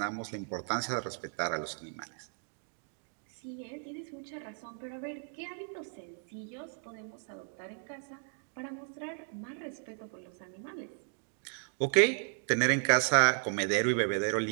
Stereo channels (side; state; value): left; silent; 55 dB below the other